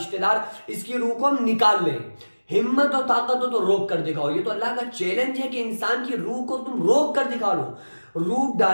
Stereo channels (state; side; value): inverted; both; correlation -1.00